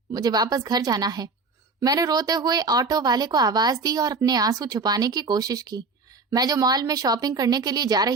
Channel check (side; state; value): left; quieter; 4.1 dB